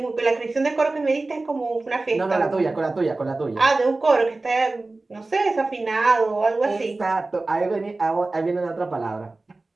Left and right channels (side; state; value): left; quieter; 3.2 dB